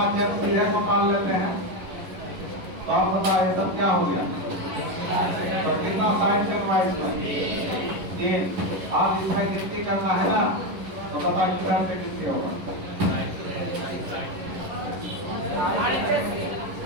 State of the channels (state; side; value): late; left; 11 ms